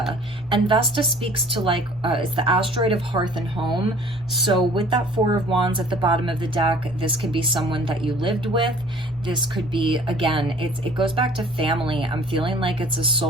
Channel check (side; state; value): right; noise; rumble, 23 dB below the sound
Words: and Vesta speaks to like, it's the asteroid of hearth and home. So with that Four of Wands at the bottom of the deck, this could be someone that you lived with. This could be, again, it goes back to family. I'm feeling like it's a